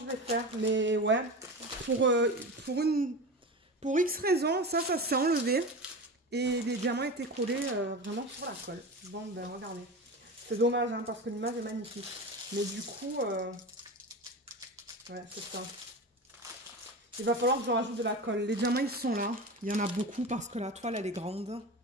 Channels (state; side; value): normal; both; correlation 0.27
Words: vais faire. Mais ouais. Pour X raison, ça s'est enlevé. Et les diamants étaient collés vraiment sur la colle. Bon, ben regardez. C'est dommage, hein, parce que l'image est magnifique. Mais du coup... ouais, c'est ça. Il va falloir que je rajoute de la colle. Les diamants, ils sont là. Il y en a beaucoup parce que la toile, elle est grande. Vous